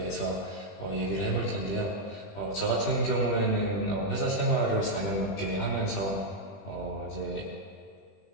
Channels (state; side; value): late; right; 20 ms